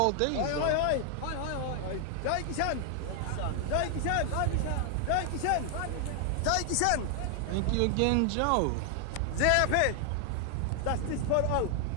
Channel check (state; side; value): different; both; correlation 0.00